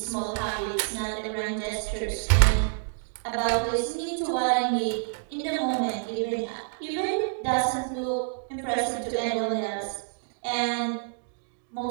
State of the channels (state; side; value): silent; left; 59 dB below the other